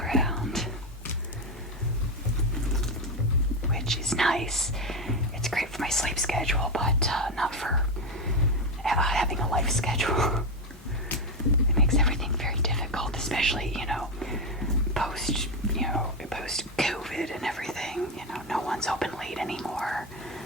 which is nice. It's great for my sleep schedule, but not for having a life schedule. It makes everything very difficult, especially, you know, post COVID and everything. You know, no one's open late anymore,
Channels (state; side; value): normal; both; correlation 0.12